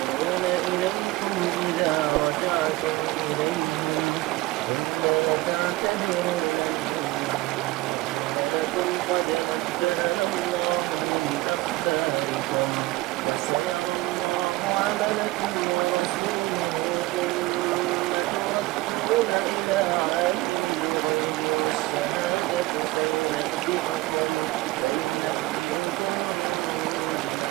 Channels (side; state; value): left; quieter; 19.4 dB